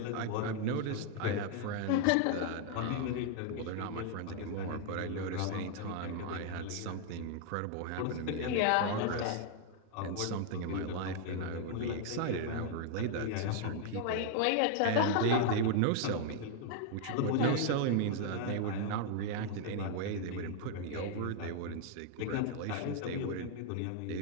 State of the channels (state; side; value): different; both; correlation 0.00